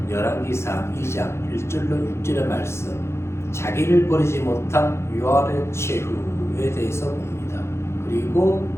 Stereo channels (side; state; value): right; late; 0.13 ms